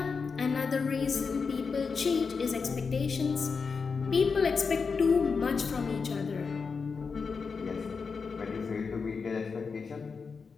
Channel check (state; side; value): quieter; right; 5.2 dB